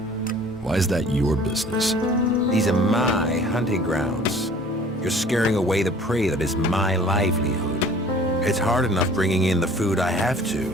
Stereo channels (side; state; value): both; normal; correlation 0.50